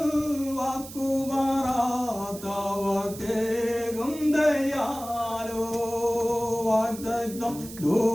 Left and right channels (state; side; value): noise; right; hiss, 14 dB below the sound